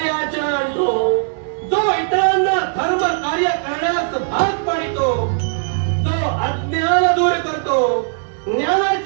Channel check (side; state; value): left; silent; digital silence